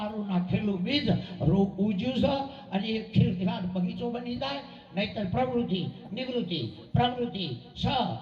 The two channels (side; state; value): both; identical; correlation 1.00